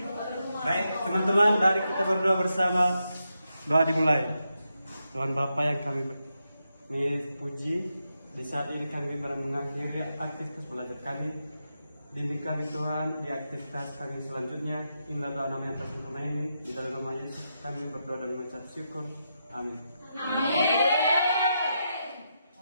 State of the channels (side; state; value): both; inverted; correlation -0.84